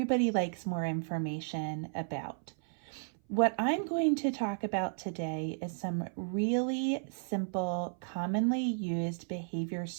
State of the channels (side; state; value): left; silent; 55 dB below the other